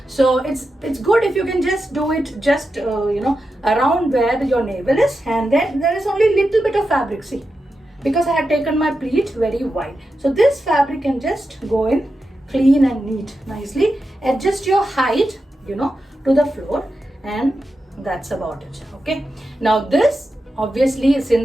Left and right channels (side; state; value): both; normal; correlation 0.89